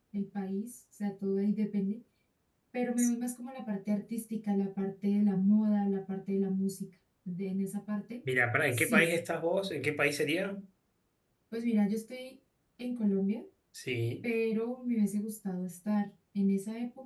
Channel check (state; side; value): identical; both; correlation 1.00